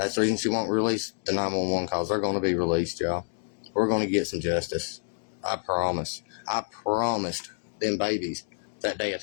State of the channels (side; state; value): right; silent; digital silence